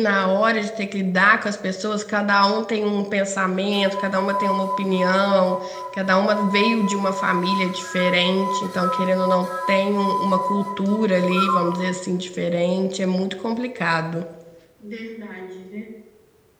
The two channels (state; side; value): identical; both; correlation 1.00